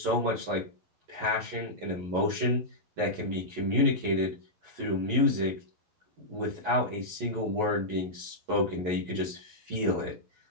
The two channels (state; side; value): late; left; 11 ms